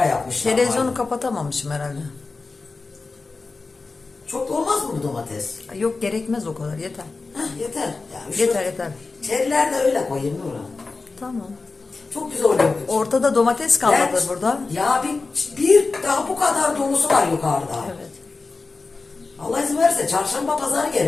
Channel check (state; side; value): quieter; right; 3.9 dB